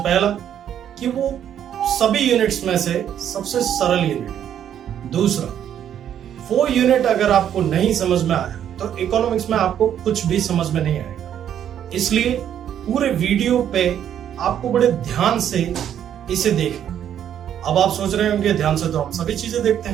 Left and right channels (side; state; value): left; quieter; 9.8 dB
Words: कि वो सभी यूनिट्स में से सबसे सरल यूनिट है। दूसरा, वो यूनिट अगर आपको नहीं समझ में आया तो इकोनॉमिक्स में आपको कुछ भी समझ में नहीं आएगा। इसलिए पूरे वीडियो पे आपको बड़े ध्यान से इसे देखना। अब आप सोच रहे होंगे ध्यान से तो हम सभी चीजें देखते